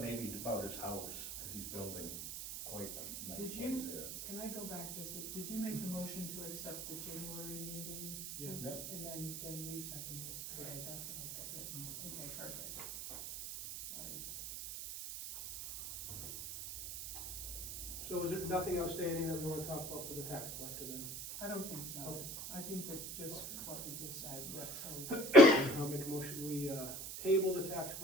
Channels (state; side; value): noise; right; hiss, 7 dB below the sound